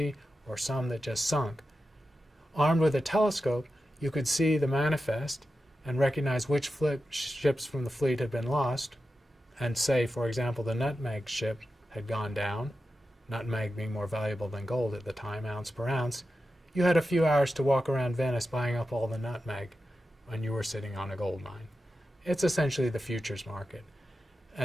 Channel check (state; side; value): normal; both; correlation 0.91